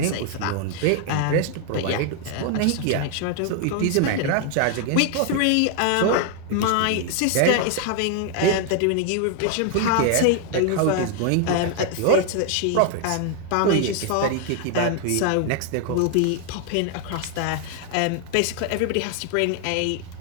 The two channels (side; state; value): both; different; correlation 0.00